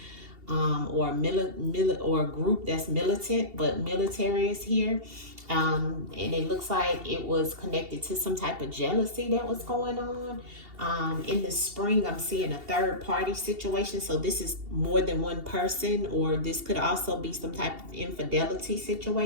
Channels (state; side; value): late; left; 2.7 ms